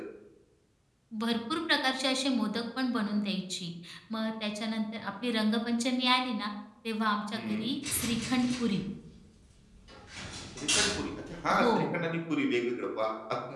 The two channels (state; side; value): identical; both; correlation 1.00